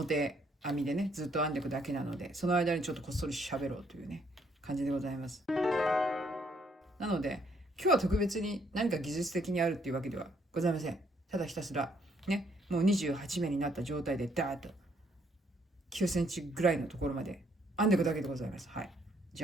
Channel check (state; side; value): normal; both; correlation 0.69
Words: 編みでねずっと編んでいくだけなので、その間にちょっとこっそり喋ろうというね感じでございます。なので今日は特別に何か技術的にあるっていうわけではございません。ただひたすらね、もう28目になった状態でダーッと9センチぐらいのところまで編んでいくだけでございます。はい。じ